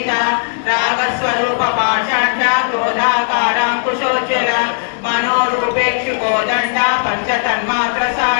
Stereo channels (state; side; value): silent; right; 69 dB below the other